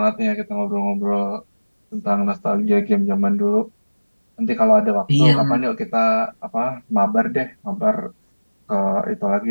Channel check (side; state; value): both; inverted; correlation -1.00